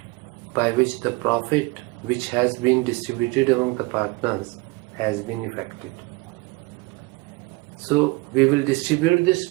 by which the profit which has been distributed among the partners has been effected. So we will distribute this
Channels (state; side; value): quieter; left; 24.1 dB